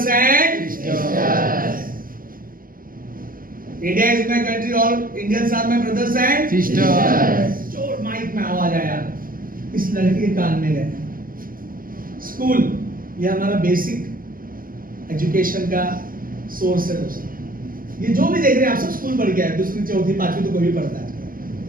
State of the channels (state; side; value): late; left; 0.41 ms